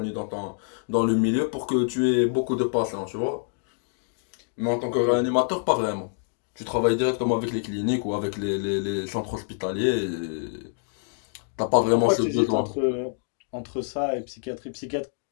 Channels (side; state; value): right; silent; digital silence